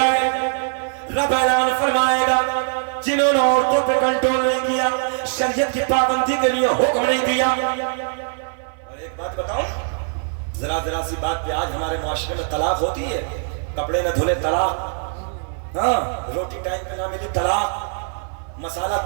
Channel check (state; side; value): silent; left; 57 dB below the other